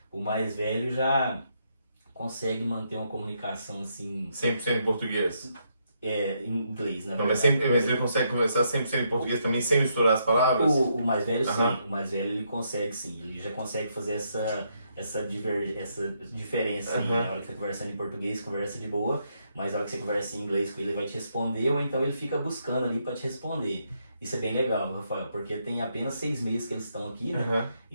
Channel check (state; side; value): inverted; both; correlation -0.77